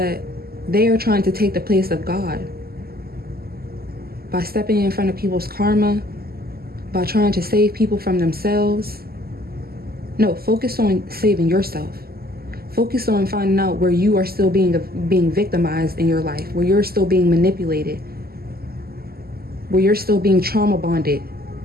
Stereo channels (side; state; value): left; late; 0.45 ms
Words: they are trying to take the place of God by stepping in front of people's karma, by trying to save people from themselves. No, focus on saving yourself. Focus on finding out where you are still being victimized in your life, where you're still being manipulated, where you're still being trauma bonded,